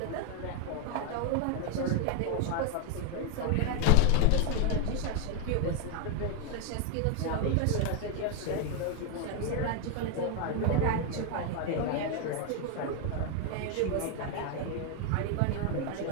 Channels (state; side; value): different; both; correlation 0.01